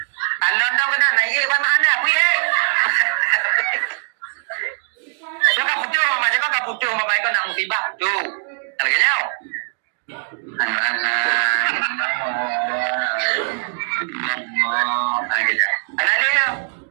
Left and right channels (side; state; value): left; silent; digital silence